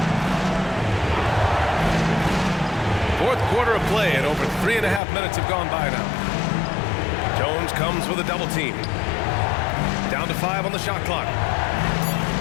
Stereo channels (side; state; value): right; drops out; at 5.0 s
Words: Fourth quarter of play, and over 3.5 minutes have gone by now. Jones comes with a double team. Down to 5 on the shot clock.